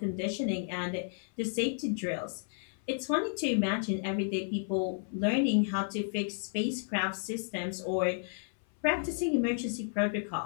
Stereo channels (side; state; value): right; silent; 56 dB below the other